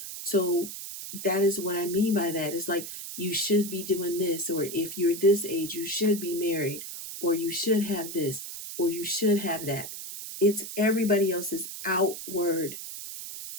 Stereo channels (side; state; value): right; noise; hiss, 9 dB below the sound